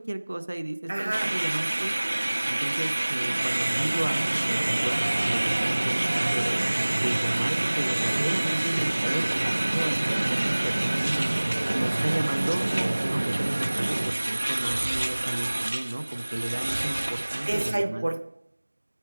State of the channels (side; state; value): both; inverted; correlation -1.00